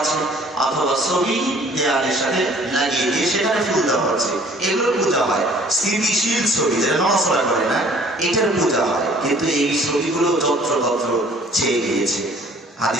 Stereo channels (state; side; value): normal; both; correlation 0.54